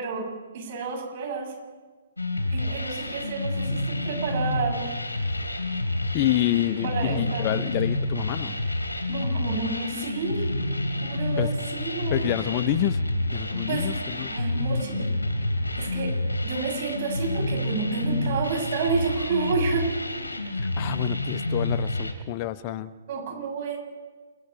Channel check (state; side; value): inverted; both; correlation -0.61